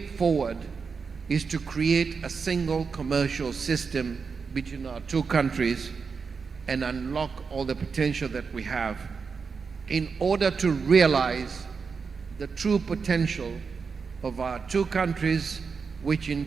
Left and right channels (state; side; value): quieter; left; 5.3 dB